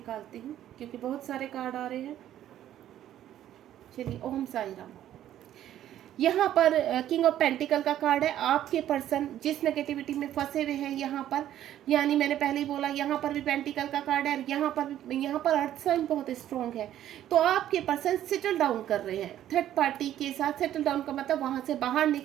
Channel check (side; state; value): left; quieter; 11.9 dB